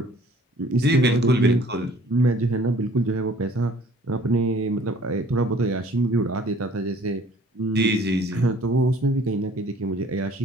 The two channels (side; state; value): both; normal; correlation 0.54